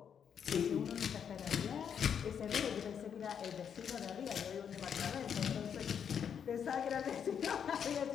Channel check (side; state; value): right; quieter; 7.8 dB